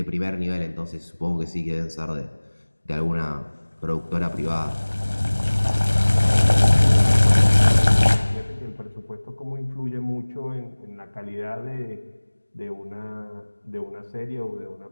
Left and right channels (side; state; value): both; inverted; correlation -1.00